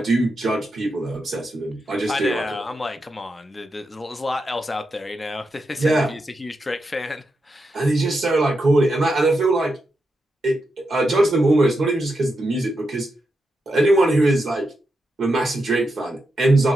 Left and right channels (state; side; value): normal; both; correlation 0.86